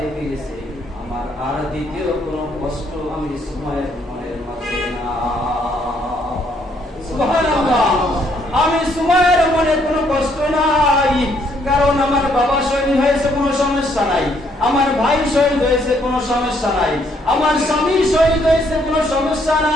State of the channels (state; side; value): normal; both; correlation 0.69